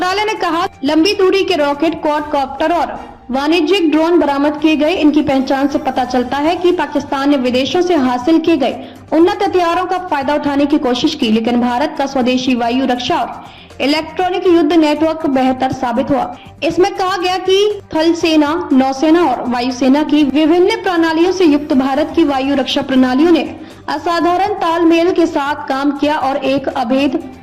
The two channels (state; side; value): identical; both; correlation 1.00